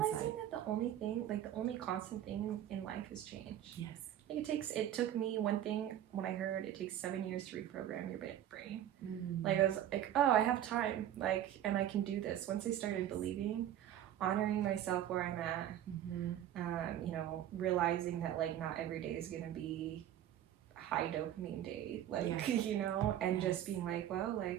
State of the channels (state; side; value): quieter; left; 11.4 dB